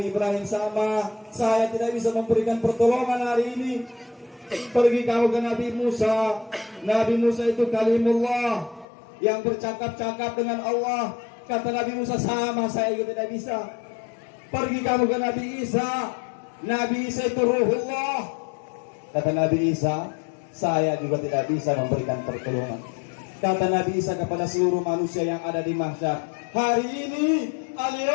Ibrahim, sama, saya tidak bisa memberikan pertolongan hari ini. Pergi kamu ke Nabi Musa. Nabi Musa itu kalimullah, yang bercakap-cakap dengan Allah. Kata Nabi Musa, sama, saya juga tidak bisa. Pergi kamu ke Nabi Isa. Nabi Isa itu ruhullah. Kata Nabi Isa, saya juga tidak bisa memberikan pertolongan. Kata Nabi Isa kepada seluruh manusia yang ada di mahsyar, hari ini,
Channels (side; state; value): right; drops out; at 8.8 s